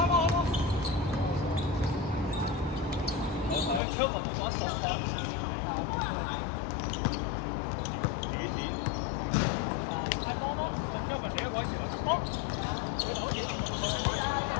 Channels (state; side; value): drops out; right; at 3.8 s